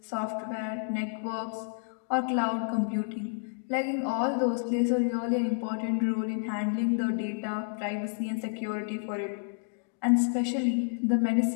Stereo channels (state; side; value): silent; right; digital silence